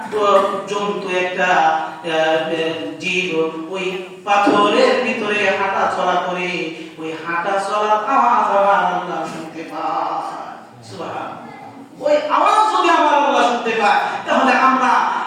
জন্তু, একটা জীব ওই পাথরের ভিতরে হাঁটা চলা করে, ওই হাঁটা চলার আওয়াজ আমার আল্লাহ শুনতে পায়। সুবহানাল্লাহ। ওই আওয়াজ যদি আমার আল্লাহ শুনতে পায়, তাহলে আমরা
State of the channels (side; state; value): both; identical; correlation 1.00